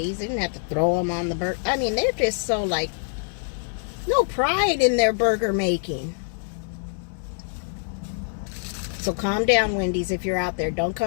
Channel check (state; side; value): silent; right; digital silence